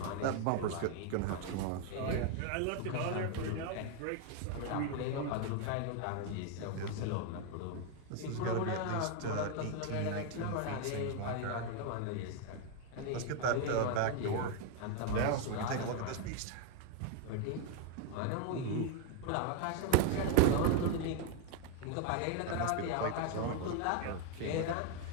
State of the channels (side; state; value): both; different; correlation 0.01